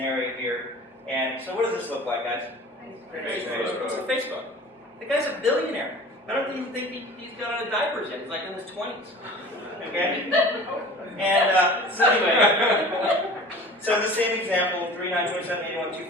here. And so what does this look like, guys? Facebook. It's a Facebook. The guy's a billionaire. I don't even think he's got out of diapers yet. He's like in his 20s. Okay? And so anyway, so the same example, 3, 9, 27, 81,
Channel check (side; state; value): both; normal; correlation 0.41